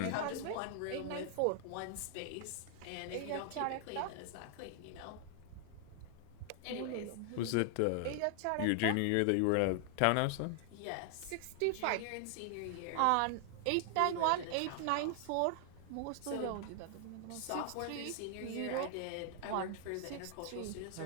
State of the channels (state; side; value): different; both; correlation 0.00